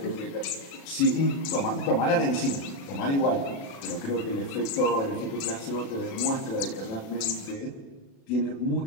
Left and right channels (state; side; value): late; right; 36 ms